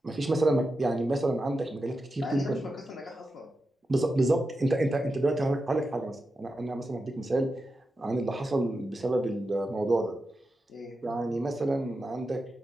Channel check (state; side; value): normal; both; correlation 0.90